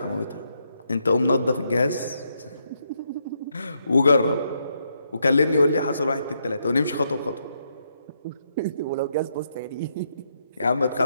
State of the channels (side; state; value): both; inverted; correlation -0.78